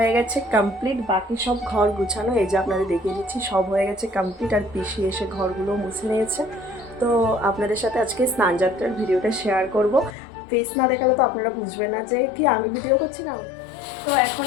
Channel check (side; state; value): right; drops out; at 10.2 s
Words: গেছে কমপ্লিট, বাকি সব ঘর গুছানো এই যে আপনাদের দেখিয়ে দিচ্ছি, সব হয়ে গেছে কমপ্লিট। আর পিসি এসে ঘরগুলো মুছে নিয়েছে। তো আপনাদের সাথে আজকে স্নান যাত্রার ভিডিওটা শেয়ার করব। ফেস না দেখালে তো আপনারা বুঝবেন না যে কি আমি ভিডিও করছি না। তো এখন